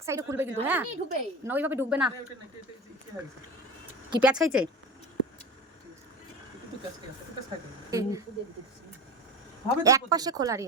সাইডে খুলবে কিন্তু, হ্যাঁ না ওইভাবে ঢুকবে না। কি পেঁয়াজ খাইছে? এক পাশে খোলা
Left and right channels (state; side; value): normal; both; correlation 0.30